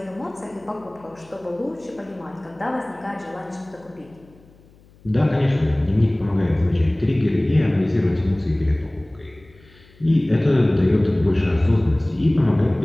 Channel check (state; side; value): noise; left; hum, 28 dB below the sound